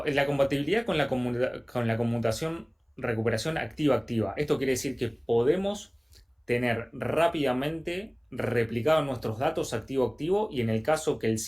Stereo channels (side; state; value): both; identical; correlation 1.00